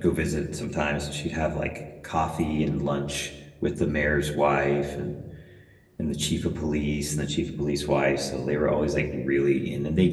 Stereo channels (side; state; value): both; identical; correlation 1.00